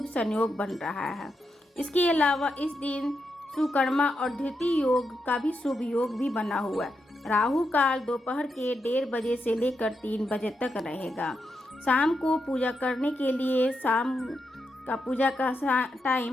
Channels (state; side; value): normal; both; correlation 0.84